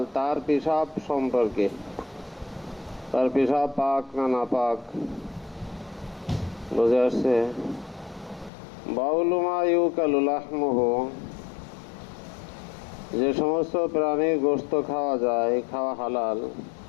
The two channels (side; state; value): right; drops out; at 8.5 s